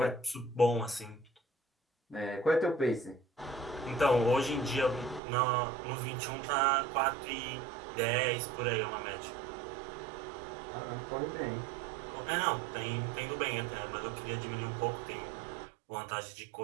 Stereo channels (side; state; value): left; drops out; at 5.2 s